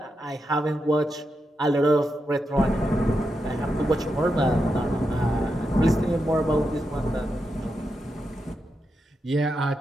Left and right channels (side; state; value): both; normal; correlation 0.86